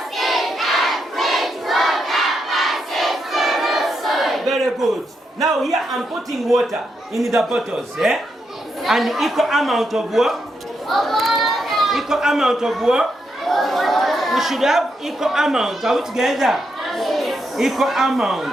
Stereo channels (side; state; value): both; normal; correlation 0.82